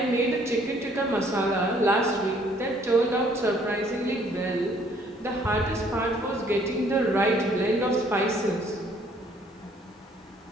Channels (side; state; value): both; normal; correlation 0.62